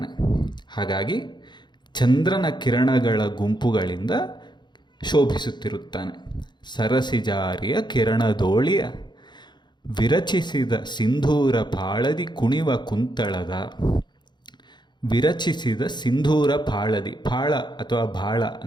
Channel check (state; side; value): late; right; 0.21 ms